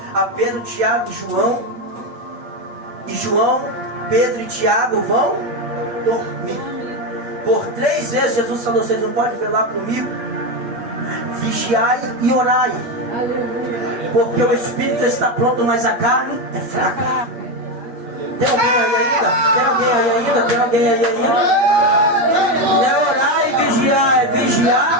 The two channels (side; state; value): left; late; 8.5 ms